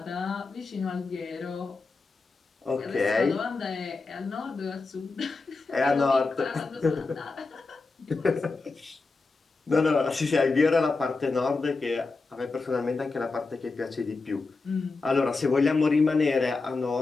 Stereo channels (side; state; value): right; quieter; 3.9 dB